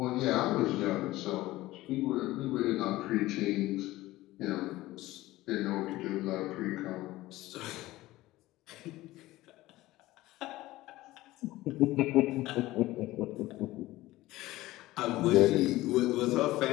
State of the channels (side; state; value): right; quieter; 17.5 dB